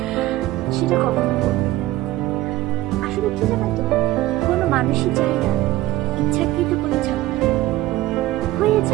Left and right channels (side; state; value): left; quieter; 16.4 dB